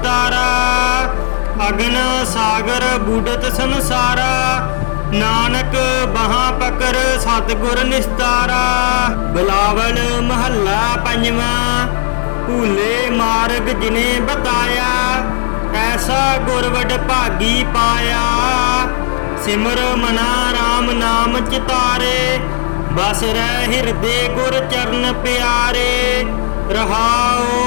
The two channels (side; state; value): right; silent; digital silence